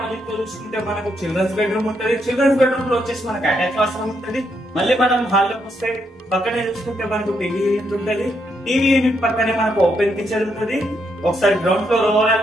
లో చూసుకుంటే మనకు చిల్డ్రన్స్ బెడ్రూమ్ ఉంటుంది. చిల్డ్రన్స్ బెడ్రూమ్ లో వచ్చేసి మనకు అటాచ్ వాష్రూమ్ ఉంటుంది. మళ్ళీ మనం హాల్ లోకి వస్తే పక్కనే చూసుకుంటే మనకు టీవీ యూనిట్ ఉంటుంది. టీవీ యూనిట్ పక్కనే మనకు ఓపెన్ కిచెన్ ఉంటుంది. ఒకసారి గ్రౌండ్ ఫ్లోర్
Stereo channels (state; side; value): normal; both; correlation 0.78